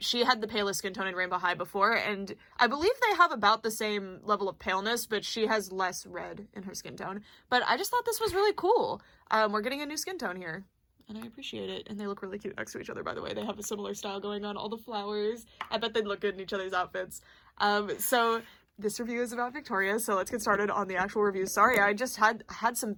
she had the palest skin tone in Rainbow High before, and I believe they have about the same level of paleness, but she has less red in her skin tone. But I just thought this was really cool. We're getting a new skin tone here, and I appreciate it. And they look really cute next to each other, by the way. They have a similar style going on, all the flowers. I bet they'd look good in each other's outfits. So this review is about Victoria, so let's get started on the actual review. Sorry, I just had some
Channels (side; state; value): both; identical; correlation 1.00